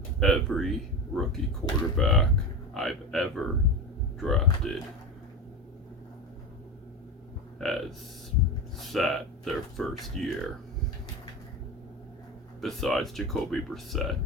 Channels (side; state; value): both; normal; correlation 0.23